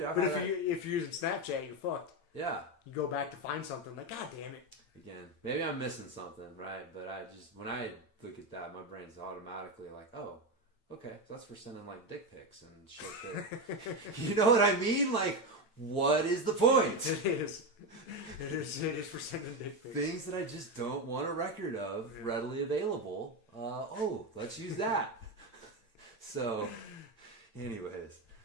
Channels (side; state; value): right; late; 8.8 ms